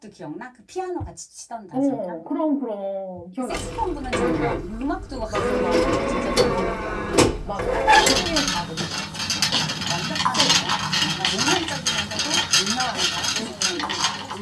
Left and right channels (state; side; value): identical; both; correlation 1.00